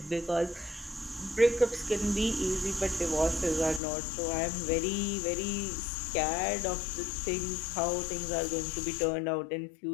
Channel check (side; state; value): right; drops out; at 3.8 s